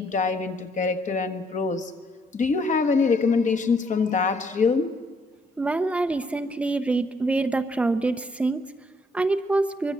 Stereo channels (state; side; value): normal; both; correlation 0.69